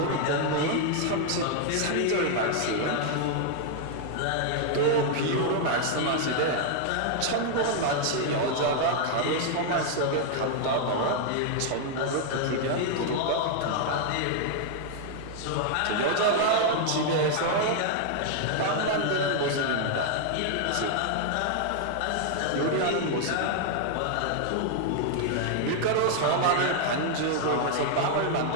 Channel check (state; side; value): different; both; correlation 0.00